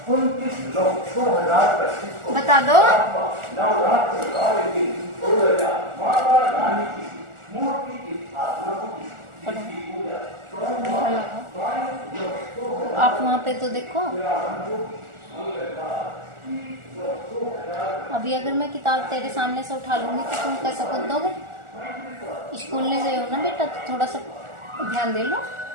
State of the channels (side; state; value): left; late; 1.4 ms